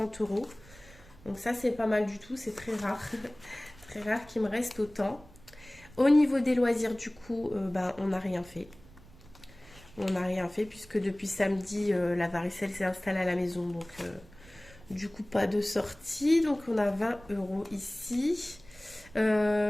€. Donc ça c'est pas mal du tout, c'est très rare. Très rare qu'il me reste autant. Au niveau des loisirs du coup, ben, on n'a rien fait. On n'a rien fait puisque depuis samedi la varicelle s'est installée à la maison. Donc du coup pas de sortie. Donc on a 20 € ici.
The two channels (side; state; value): right; noise; rumble, 23 dB below the sound